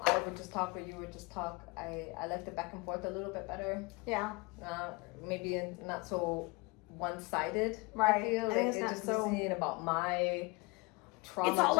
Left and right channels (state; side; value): quieter; right; 26.7 dB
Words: would just talk or you would just talk. I like the back and forth a little bit better. Yeah. Maybe not so one-sided. Right. I feel like it's it's not just so... listening about my trauma. It's all